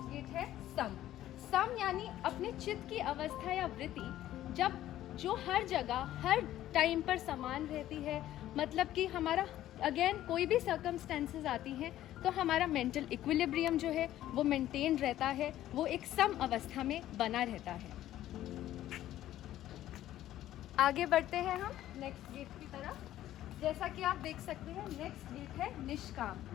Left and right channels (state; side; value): quieter; right; 13.3 dB